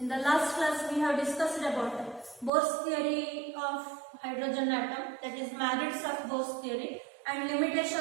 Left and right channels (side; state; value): left; drops out; at 2.5 s